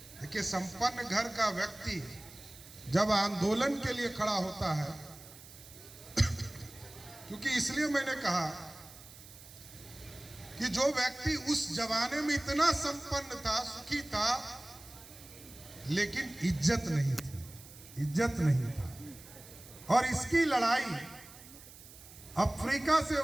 देखिए संपन्न घर का व्यक्ति जब आंदोलन के लिए खड़ा होता है, क्योंकि इसलिए मैंने कहा कि जो व्यक्ति उस जमाने में इतना संपन्न था, सुखी था, लेकिन इज्जत नहीं थी, इज्जत नहीं था। और इसकी लड़ाई अफ्रीका से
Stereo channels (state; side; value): noise; right; hiss, 18 dB below the sound